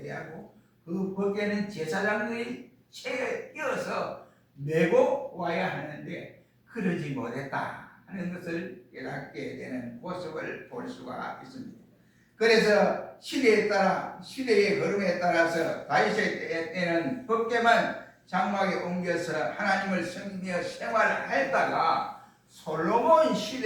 그 법궤는 제사장들이 채에 끼어서 메고 와야 하는데 그러지 못했다 하는 것을 깨닫게 되는 모습을 볼 수가 있습니다. 그래서 시대에 따라, 시대의 흐름에 따라서 다윗의 때는 법궤만 장막에 옮겨서 하나님을 섬기며 생활했다가 솔로몬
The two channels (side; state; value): both; identical; correlation 1.00